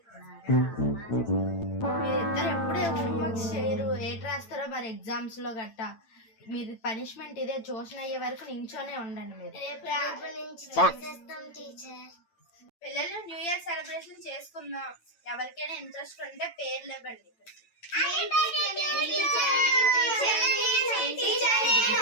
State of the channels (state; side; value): late; right; 8.9 ms